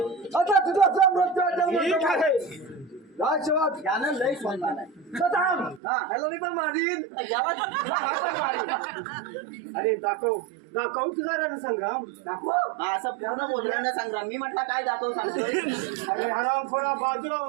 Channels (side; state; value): left; drops out; at 5.8 s